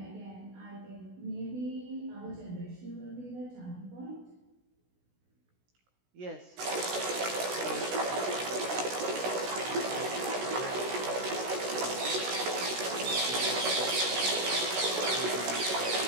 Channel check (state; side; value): late; left; 16 ms